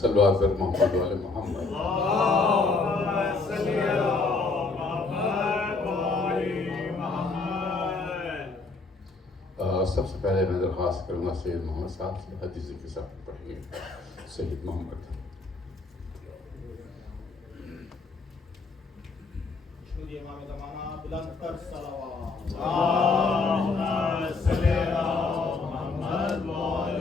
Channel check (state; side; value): quieter; right; 3.9 dB